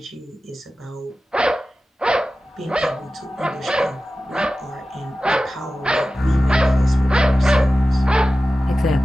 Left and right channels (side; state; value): both; normal; correlation 0.95